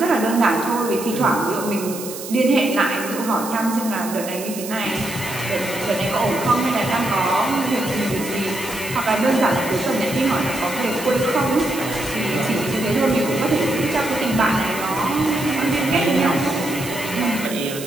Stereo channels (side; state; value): right; noise; hiss, 11 dB below the sound